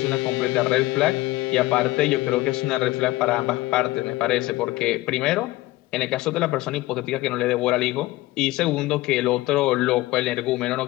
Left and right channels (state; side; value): quieter; right; 18.3 dB